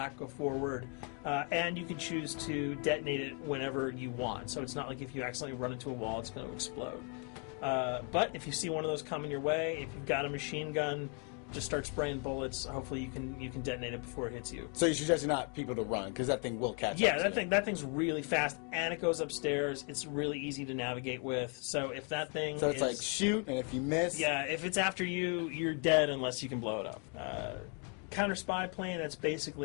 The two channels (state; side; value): quieter; right; 38.0 dB